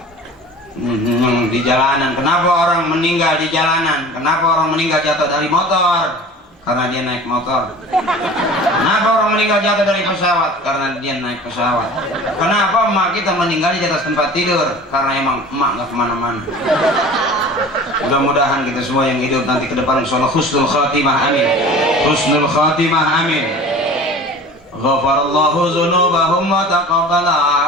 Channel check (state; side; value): normal; both; correlation 0.41